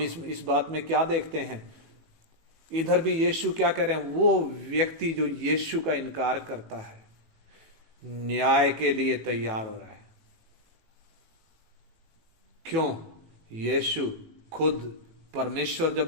इस बात में क्या देखते हैं, इधर भी यीशु क्या कह रहे हैं, वो व्यक्ति जो यीशु का इनकार करता है न्याय के लिए तैयार हो रहा है। क्यों? यीशु खुद परमेश्वर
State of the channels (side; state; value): left; late; 18 ms